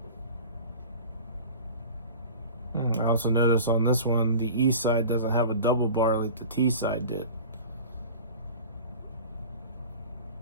also notice on this one, the E side doesn't have a double bar like the T side did.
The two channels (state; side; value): inverted; both; correlation -0.38